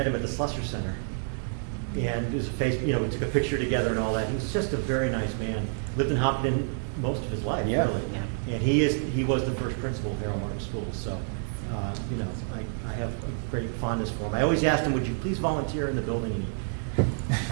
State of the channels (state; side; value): silent; left; digital silence